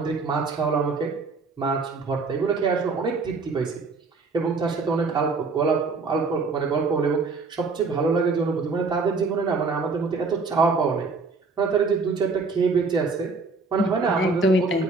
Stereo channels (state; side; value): quieter; left; 4.1 dB